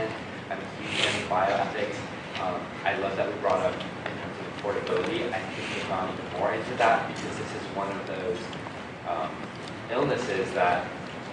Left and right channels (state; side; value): identical; both; correlation 1.00